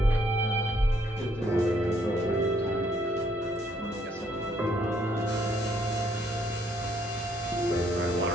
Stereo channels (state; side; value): normal; both; correlation 0.69